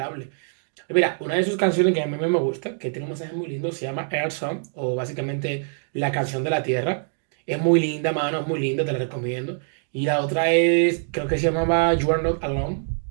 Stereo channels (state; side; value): silent; left; digital silence